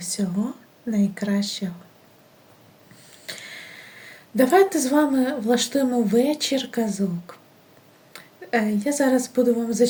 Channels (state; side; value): identical; both; correlation 1.00